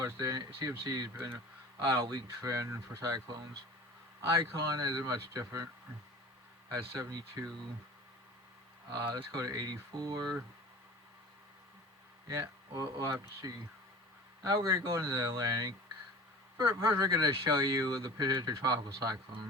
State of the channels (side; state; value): both; normal; correlation 0.39